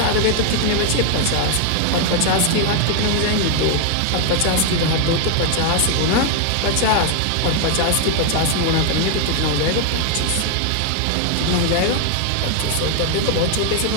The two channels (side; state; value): both; different; correlation 0.00